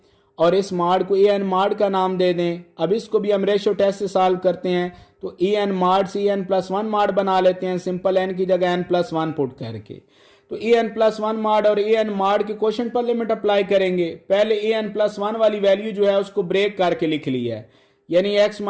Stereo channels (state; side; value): identical; both; correlation 1.00